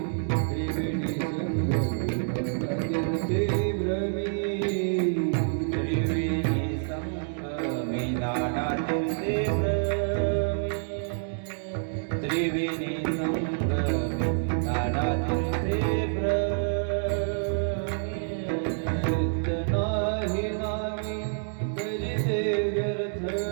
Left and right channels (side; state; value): left; silent; digital silence